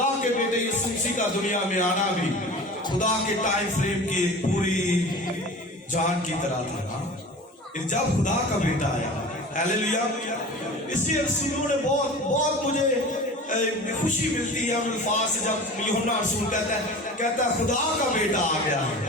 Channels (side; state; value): both; normal; correlation 0.37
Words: کے بیٹے یسوع مسیح کا دنیا میں آنا بھی خدا کے ٹائم فریم کی ایک پوری جان کی طرح تھا. جب خدا کا بیٹا آیا, ہیلیلویا. اس لیے رسولوں نے بہت مجھے خوشی ملتی ہے ان الفاظ سے جب یوحنا رسول کہتا ہے خدا کا بیٹا آ گیا ہے.